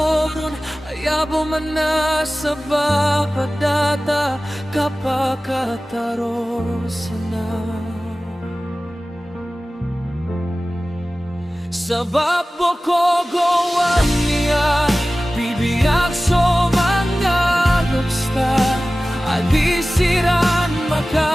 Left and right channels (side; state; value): both; normal; correlation 0.97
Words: nun Ayabo man na sa bapadata Kapakatarosa Sa babo ko gawan niya Bibiyag so mga lupsta Adisiran